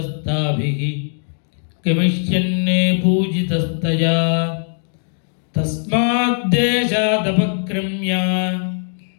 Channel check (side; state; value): right; silent; digital silence